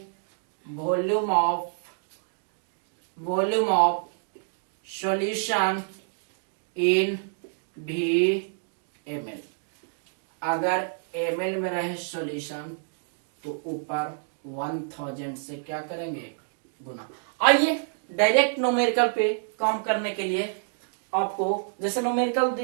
volume of solution in ml। अगर ml में रहे सॉल्यूशन तो ऊपर 1000 से क्या करेंगे, गुना। आइए डायरेक्ट न्यूमेरिकल पे काम करने के लिए आपको जैसे न्यूमेरिकल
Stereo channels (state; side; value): silent; left; digital silence